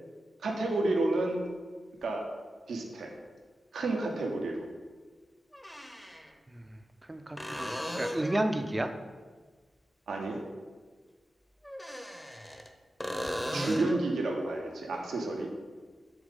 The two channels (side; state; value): both; normal; correlation 0.92